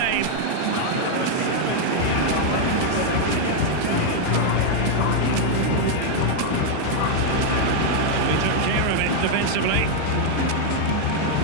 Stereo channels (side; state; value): both; different; correlation 0.00